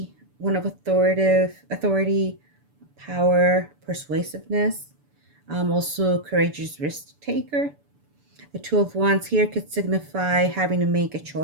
one of authority, power, persuasiveness, also courageous risk taker. The Two of Wands here could signify having to make a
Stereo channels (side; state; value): left; late; 6.9 ms